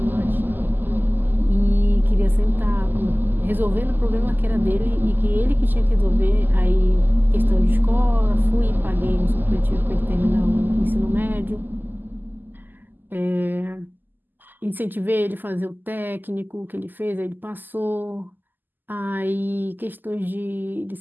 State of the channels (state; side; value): late; left; 0.089 ms